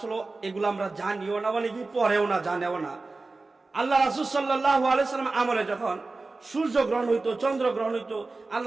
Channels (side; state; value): left; quieter; 3.5 dB